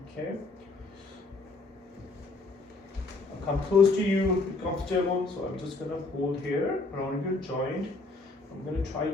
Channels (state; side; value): quieter; right; 3.4 dB